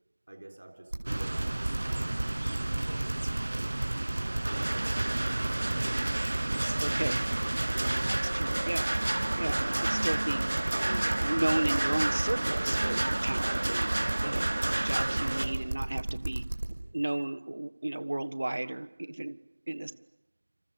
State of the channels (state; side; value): inverted; both; correlation -1.00